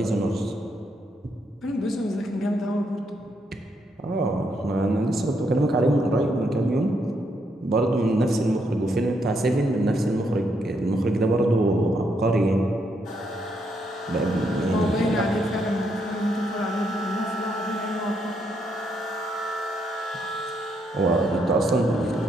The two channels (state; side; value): normal; both; correlation 0.76